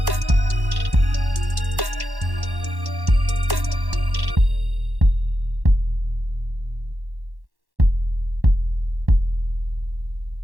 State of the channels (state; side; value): late; left; 1.1 ms